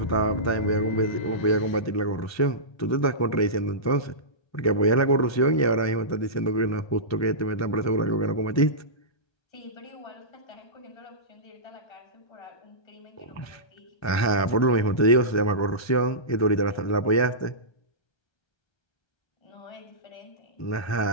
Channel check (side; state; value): right; late; 1.3 ms